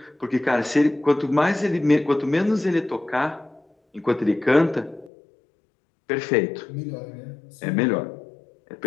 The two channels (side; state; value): right; drops out; at 5.1 s